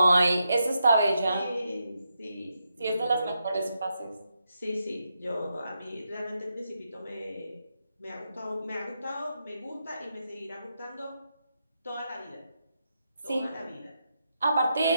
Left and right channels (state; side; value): inverted; both; correlation -0.84